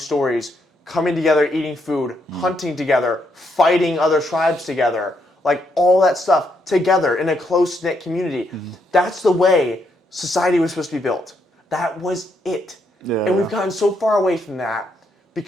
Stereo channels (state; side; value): normal; both; correlation 0.76